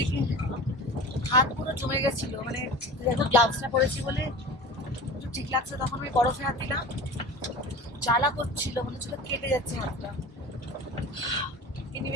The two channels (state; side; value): normal; both; correlation 0.35